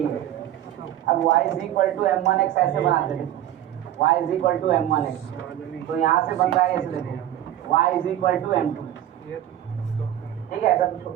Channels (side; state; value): left; quieter; 12.1 dB